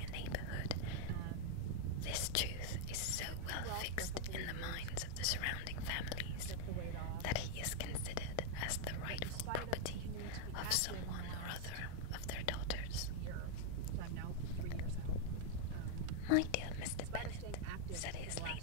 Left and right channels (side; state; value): both; different; correlation 0.00